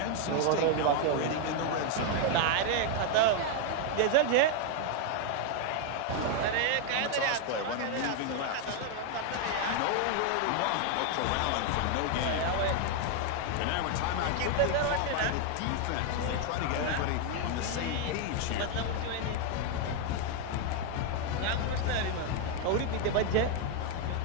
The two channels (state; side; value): different; both; correlation 0.01